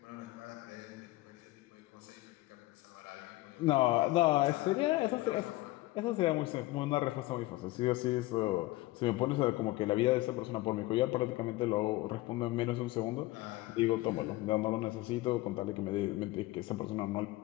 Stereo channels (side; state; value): right; quieter; 19.1 dB